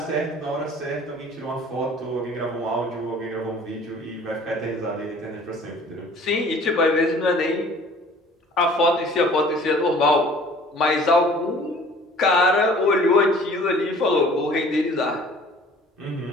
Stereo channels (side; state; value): both; normal; correlation 0.50